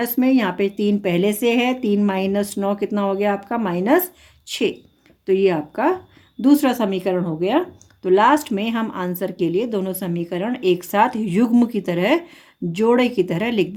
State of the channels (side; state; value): both; identical; correlation 1.00